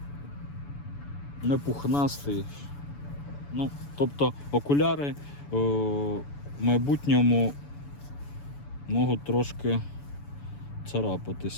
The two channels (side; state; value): right; late; 7.0 ms